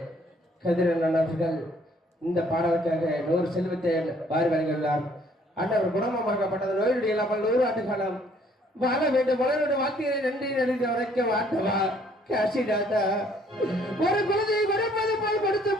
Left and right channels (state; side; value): normal; both; correlation 0.62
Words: கதிரன் அவர்கள் இந்த பாடலுக்காக 100 செல்வத்தை வாரி வழங்கியுள்ளார். அண்ணவர் குணமாக்கப்பட்டது நோயுடைய இல்லாமல் 100 ஆண்டு காலம் வாழ வேண்டும். மலருடைய வார்த்தையை நன்றி நன்றி உரைக்க வாட்டவா காசிநாதா. ஒரு குழந்தையை கொடுப்பது போல் கொடுத்து